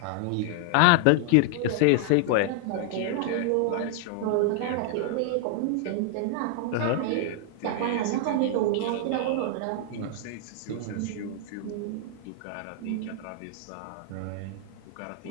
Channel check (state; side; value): different; both; correlation 0.00